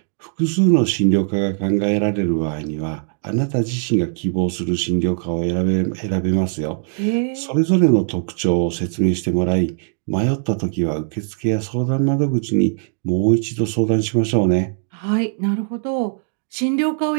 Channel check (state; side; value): silent; left; 66 dB below the other